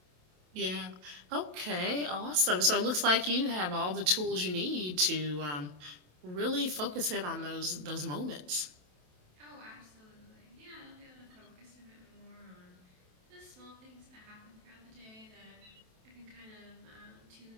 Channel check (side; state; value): left; late; 27 ms